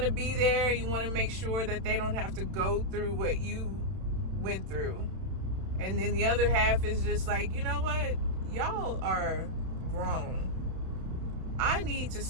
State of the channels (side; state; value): left; late; 31 ms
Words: to be there, you want to make sure that they don't have to go through what you went through. And then the other half is just like, you know what, y'all are grown. I need to